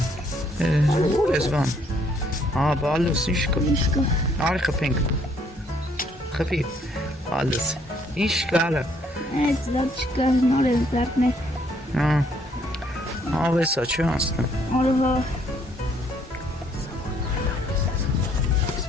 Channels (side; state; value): both; normal; correlation 0.67